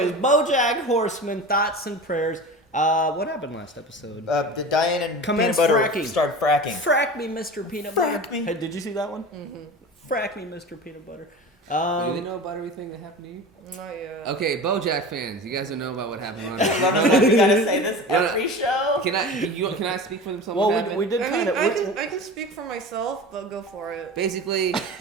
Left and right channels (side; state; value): both; normal; correlation 0.33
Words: BoJack Horseman, thoughts and prayers. What happened last episode? The Diane and Commence Peanut Butter fracking. started fracking. Frack me, Mr. Peanut Frack Butter. me. Hey, did you see that one? Mm-hmm. Frack me, Mr. Peanut Butter. Do they know about everything that happened to you? Not yet. Okay, BoJack fans, you guys don't know about what happened on We gotta say this every show. Can I speak for them? Well, we did I kind mean, of. I can speak for myself, but go for it. Basically,